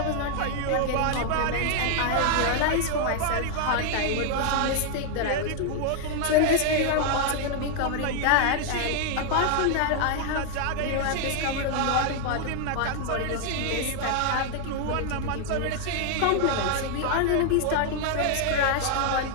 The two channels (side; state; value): both; different; correlation 0.00